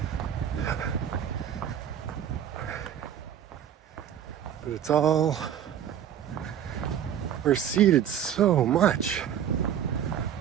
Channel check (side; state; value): left; quieter; 9.7 dB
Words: But it's all receded so much.